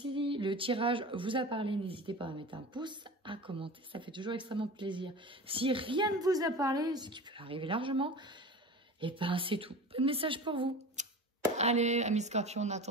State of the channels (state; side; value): normal; both; correlation 0.34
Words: le tirage vous a parlé, n'hésitez pas à mettre un pouce, à commenter, ça fait toujours extrêmement plaisir. Si rien ne vous a parlé, ce qui peut arriver largement, et c'est tout. Pas de message pour vous. Allez, amis Scorpion, en